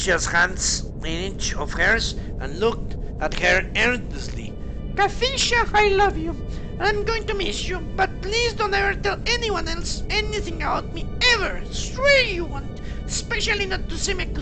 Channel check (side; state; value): both; identical; correlation 1.00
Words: hands in each of hers and looked at her earnestly. Cathicia, I love you. I'm going to miss you, but please don't ever tell anyone else anything about me, ever. Swear you won't, especially not to